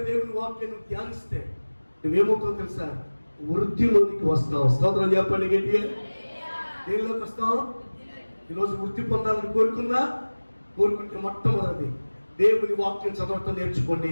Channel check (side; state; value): both; inverted; correlation -1.00